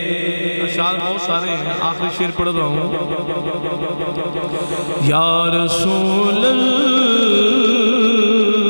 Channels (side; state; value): both; inverted; correlation -1.00